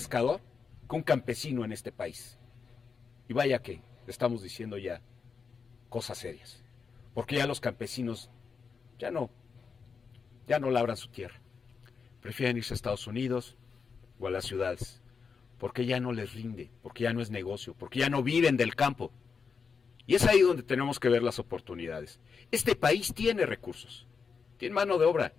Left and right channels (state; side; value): quieter; right; 5.6 dB